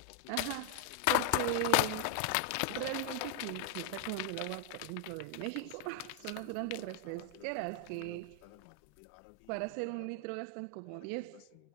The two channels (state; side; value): different; both; correlation -0.01